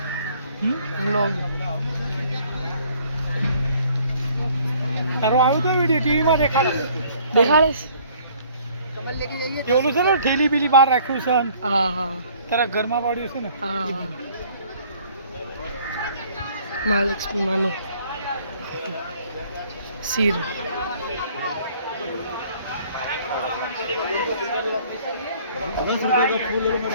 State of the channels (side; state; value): both; inverted; correlation -0.57